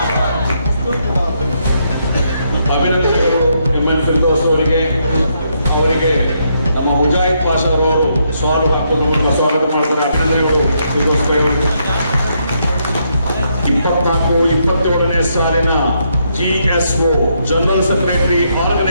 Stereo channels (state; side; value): inverted; both; correlation -0.77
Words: ಅಭಿನಂದನೆಗಳು ಎಂಎನ್ ಫಿರ್ದೌಸ್ ಅವರಿಗೆ. ಅವರಿಗೆ ನಮ್ಮ ಮುಜಾಹಿದ್ ಪಾಷಾ ಅವರು ಸ್ವಾಗತ ಹಾಕುವ ಮೂಲಕ ಸ್ವಾಗತ ಮಾಡ್ತಾರೆ. ಅಭಿನಂದನೆಗಳು ಫಿರ್ದೌಸ್ ಅವರು. 24-27ನೇ ಸಾಲಿನ ಜಿಎಸ್ಒ ಜನರಲ್ ಸೆಕ್ರೆಟರಿ